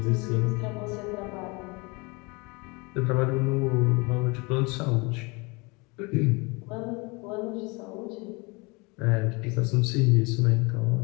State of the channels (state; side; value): quieter; right; 27.6 dB